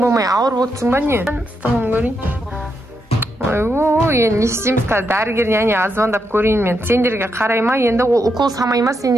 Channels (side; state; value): both; normal; correlation 0.82